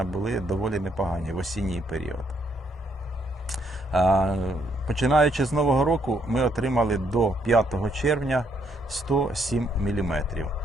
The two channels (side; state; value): both; normal; correlation 0.72